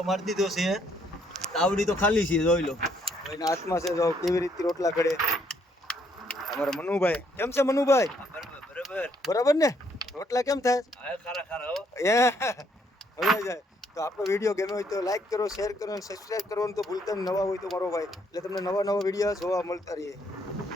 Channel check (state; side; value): normal; both; correlation 0.69